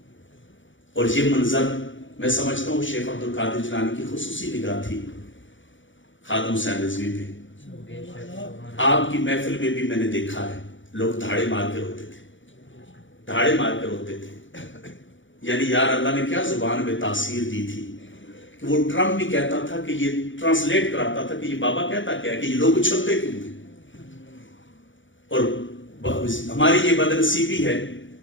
اور یہ منظر میں سمجھتا ہوں شیخ عبد القادر جیلانی کی خصوصی نگاہ تھی خادم حسین رضوی پہ. آپ کی محفل میں بھی میں نے دیکھا ہے لوگ دھاڑے مار کے روتے تھے, دھاڑے مار کے روتے تھے. یعنی یار اللہ نے کیا زبان میں تاثیر دی تھی کہ وہ ٹرمپ بھی کہتا تھا کہ یہ ٹرانسلیٹ کراتا تھا کہ یہ بابا کہتا کیا ہے کہ یہ لوگ اچھلتے کیوں ہیں. اور ہماری یہ بدنصیبی ہے,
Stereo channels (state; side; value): late; right; 0.56 ms